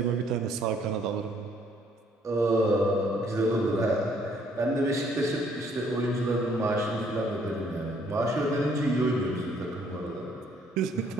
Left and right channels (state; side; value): normal; both; correlation 0.65